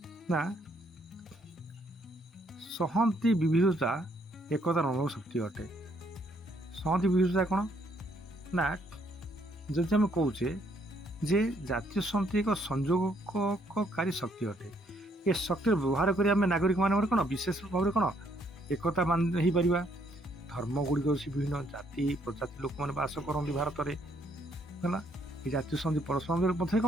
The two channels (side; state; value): both; normal; correlation 0.69